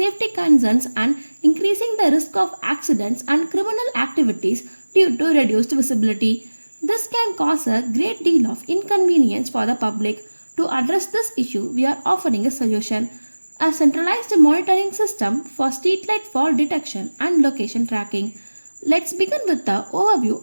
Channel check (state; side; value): inverted; both; correlation -1.00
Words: concerns and increasing the risk of accidents and criminal activities due to reduced visibility. This can cause a great deal of inconvenience for the public. To address this issue, we are offering a solution: a centralized monitoring system for streetlight fault detection and location tracking. Let's begin with the overview